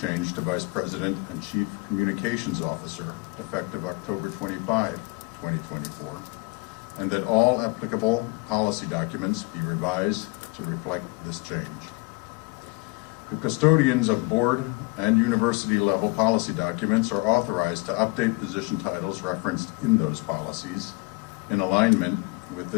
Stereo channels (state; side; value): quieter; right; 27.6 dB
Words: to Vice President and Chief Communications Officer, effective October 25, 2024, and that all applicable policy documents be revised to reflect this change. The custodians of board and university level policy documents are authorized to update position titles referenced in those policies in alignment with